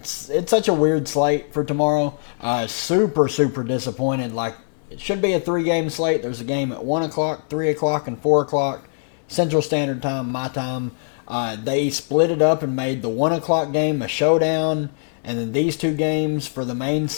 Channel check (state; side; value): silent; right; digital silence